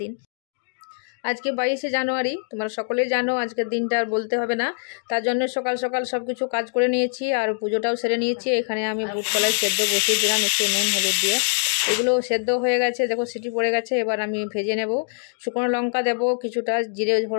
দিন, আজকে 22শে জানুয়ারি। তোমরা সকলেই জানো আজকের দিনটা আর বলতে হবে না। তার জন্য সকাল সকাল সব কিছু কাজ করে নিয়েছি আর পুজোটাও সেরে নিয়েছি। এখানে আমি বুট কলাই সেদ্ধ বসিয়ে দিলাম একটু নুন হলুদ দিয়ে। এগুলো সেদ্ধ হয়ে গেছে, দেখো সিটি পড়ে গেছে। এবার আমি ভেজে নেব। শুকনো লঙ্কা দেবো, কিছুটা জিরে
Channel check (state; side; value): silent; right; digital silence